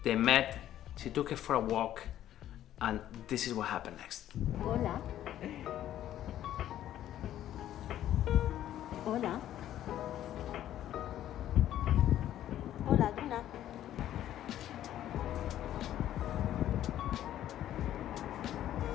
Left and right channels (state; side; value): quieter; right; 12.1 dB